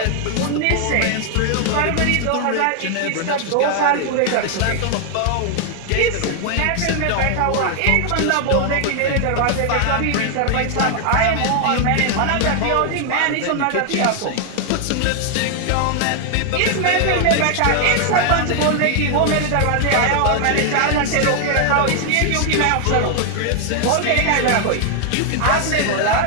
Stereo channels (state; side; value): different; both; correlation 0.00